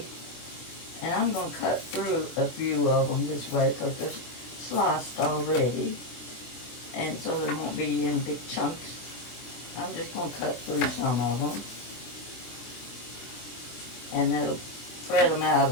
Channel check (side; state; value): right; late; 24 ms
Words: And I'm going to cut through a few of them this way because they're sliced already. And so they won't be in big chunks. I'm just going to cut through some of them. And that'll spread them out